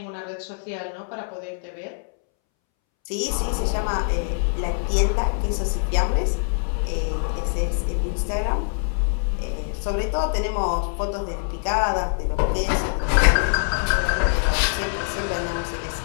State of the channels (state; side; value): silent; right; 63 dB below the other